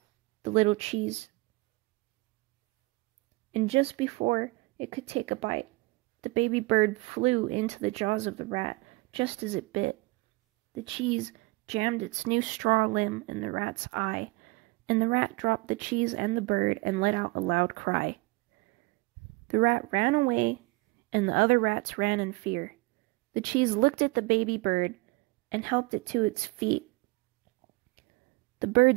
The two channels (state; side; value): quieter; left; 23.1 dB